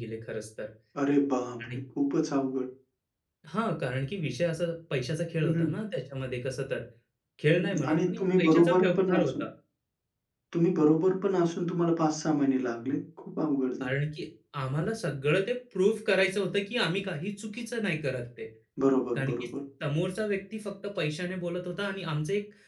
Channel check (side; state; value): both; identical; correlation 1.00